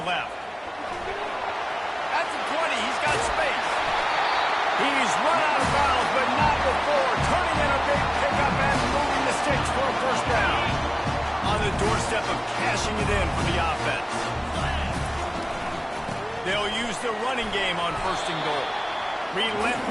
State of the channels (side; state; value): both; identical; correlation 1.00